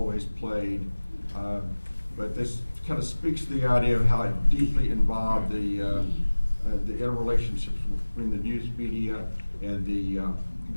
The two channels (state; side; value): inverted; both; correlation -1.00